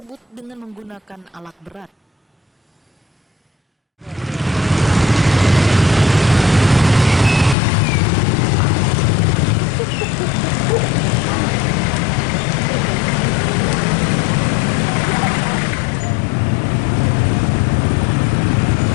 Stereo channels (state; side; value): drops out; right; at 7.6 s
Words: dengan menggunakan alat berat.